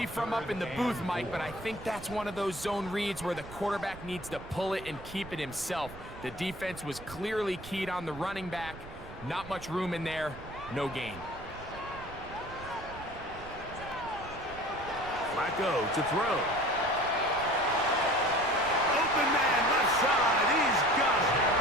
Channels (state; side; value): noise; right; rumble, 15 dB below the sound